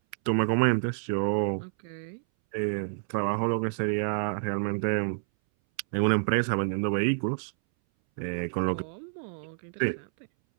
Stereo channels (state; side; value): silent; left; 59 dB below the other